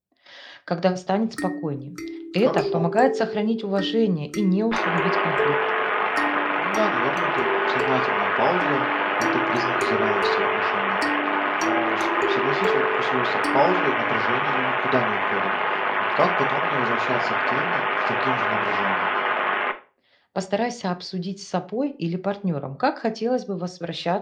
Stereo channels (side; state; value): both; identical; correlation 1.00